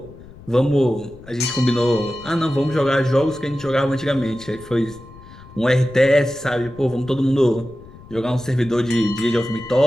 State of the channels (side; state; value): left; noise; rumble, 20 dB below the sound